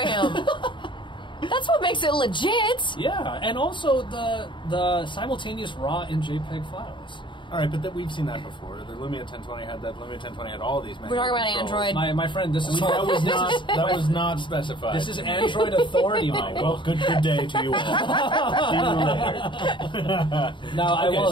That's what makes it legit. Yeah, and also the simultaneous RAW and JPEG files. All right, but we've seen that before. The Lumia 1020 had that. Lumia 1020 had all these manual We're talking about controls. Android. My friend, this is That was not specified. this is Android authority, Oh, Michael. well, good day to you all. See you later. Now, I Okay, will.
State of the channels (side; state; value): right; late; 0.23 ms